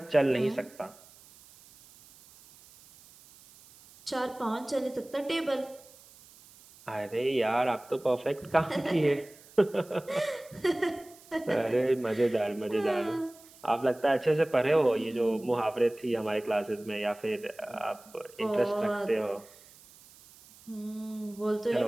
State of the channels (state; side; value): noise; right; hiss, 24 dB below the sound